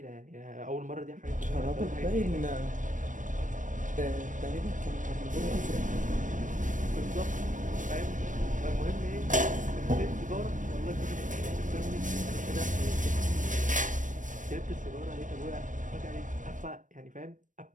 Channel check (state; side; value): late; left; 0.37 ms